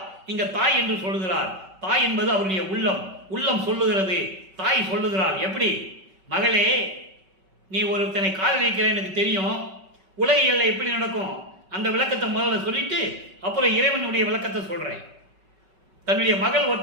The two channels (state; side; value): late; left; 5.3 ms